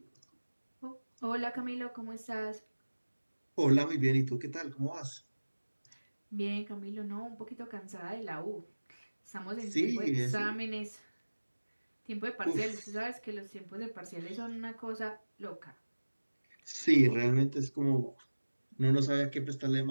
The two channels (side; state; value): both; inverted; correlation -1.00